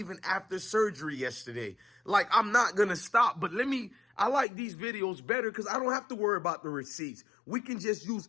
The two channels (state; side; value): drops out; right; at 4.5 s